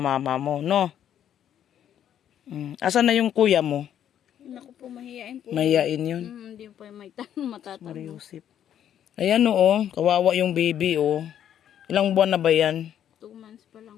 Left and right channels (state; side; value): quieter; right; 10.0 dB